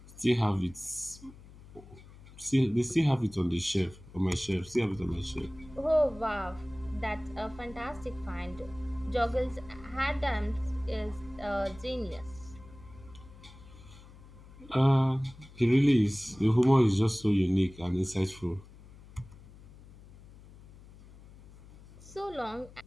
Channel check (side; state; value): left; noise; hum, 20 dB below the sound